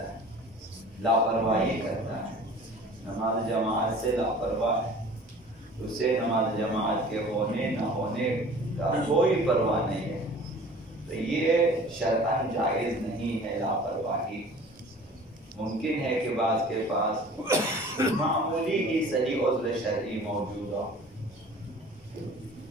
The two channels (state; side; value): normal; both; correlation 0.45